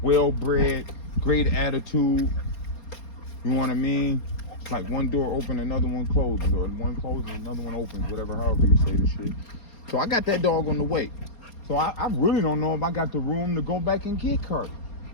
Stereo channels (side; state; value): right; late; 4.3 ms